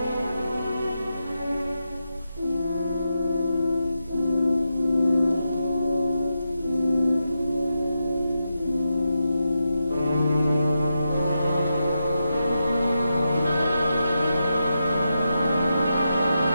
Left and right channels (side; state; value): both; inverted; correlation -0.87